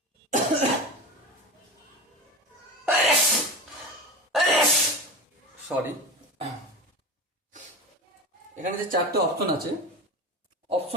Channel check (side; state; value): both; normal; correlation 0.27